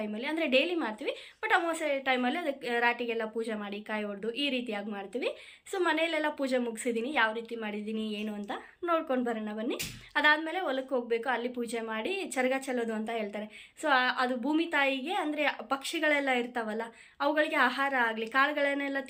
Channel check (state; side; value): identical; both; correlation 1.00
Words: ಅಂದರೆ ಡೈಲಿ ಮಾಡ್ತೀವಿ, ಬಟ್ ಅಮಾವಾಸ್ಯೆ ಟೈಮಲ್ಲಿ ಅದಕ್ಕೆ ರಾಟಿಗೆಲ್ಲ ಪೂಜೆ ಮಾಡಿ ಕಾಯಿ ಹೊಡೆದು ಈ ರೀತಿಯಾಗಿ ಮಾಡ್ತೀವಿ. ಸೊ ಮನೆಯಲ್ಲೆಲ್ಲ ಪೂಜೆ ಮುಗಿಸಿದ್ದೀನಿ, ಯಾವ ರೀತಿ ಮಾಡಿದ್ದೀನಿ ಏನು ಅಂತ ನೋಡ್ಕೊಂಡು ಬರೋಣ ಬನ್ನಿ. ಅದಾದಮೇಲೆ ಹೊಲಕ್ಕೆ ಹೋಗಬೇಕು, ಅಲ್ಲಿ ಪೂಜೆ ಮಾಡಿ ಚರಗ ಚೆಲ್ಲೋದು ಅಂತ ಹೇಳ್ತಾರೆ. ಸೊ ಅದು ಭೂಮಿ ತಾಯಿಗೆ, ಅಂದರೆ ಪಕ್ಷಿಗಳೆಲ್ಲ ಇರ್ತಾವಲ್ಲ ಅವುಗಳಿಗೆ ಆಹಾರ ಆಗಲಿ, ಕಾಳುಗಳನ್ನೆಲ್ಲ